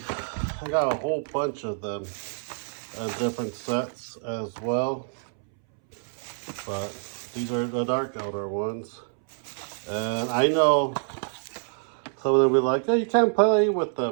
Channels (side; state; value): left; silent; 60 dB below the other